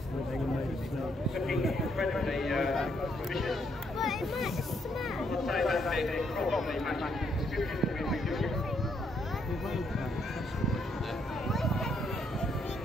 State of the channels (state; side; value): normal; both; correlation 0.73